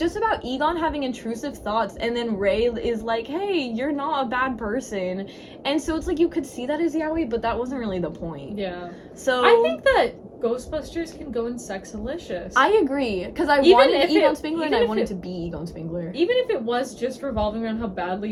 about Egon having intrusive thoughts, and then Ray is like, hey, you're not a bad person. And so it's like you could see that as Yowie, but that wasn't really the point. Yeah. So I think that Ghostbusters can go in Sexalicious. I agree, because I wanted Egon Spengler and I wanted to be Egon Spengler. Even if it was just revolving around how badly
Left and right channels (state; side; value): identical; both; correlation 1.00